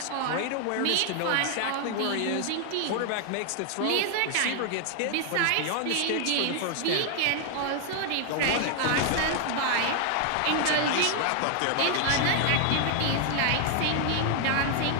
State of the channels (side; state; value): both; different; correlation 0.00